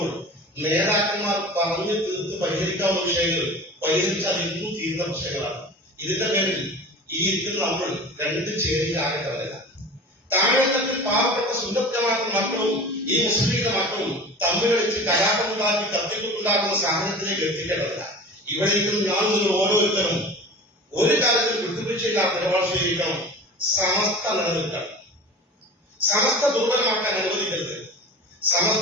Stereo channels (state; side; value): normal; both; correlation 0.36